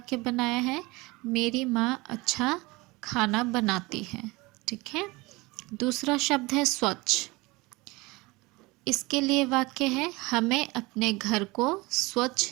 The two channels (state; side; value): quieter; left; 23.2 dB